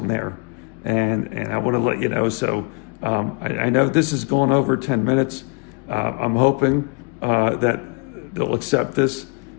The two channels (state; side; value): quieter; right; 33.9 dB